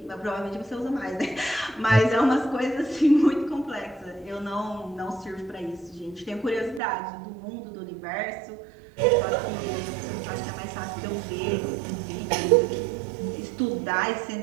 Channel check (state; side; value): drops out; left; at 6.8 s